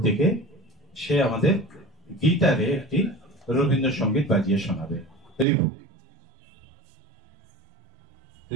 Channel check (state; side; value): drops out; left; at 5.5 s